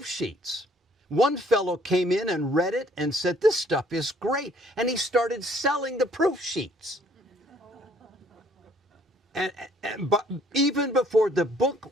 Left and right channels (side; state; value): both; normal; correlation 0.61